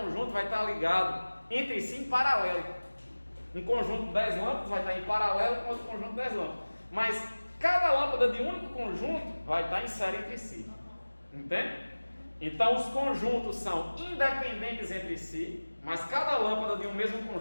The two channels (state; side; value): inverted; both; correlation -1.00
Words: vai estar ligado entre si em paralelo. Um conjunto de 10 lâmpadas vai estar em paralelo com outro conjunto de 10 lâmpadas. Mas cada lâmpada de um único conjunto vai estar em série entre si. Entende? Então os conjuntos são independentes entre si, mas cada lâmpada de um mesmo